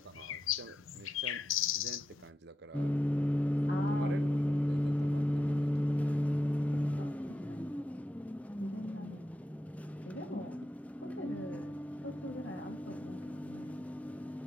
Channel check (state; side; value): normal; both; correlation 0.86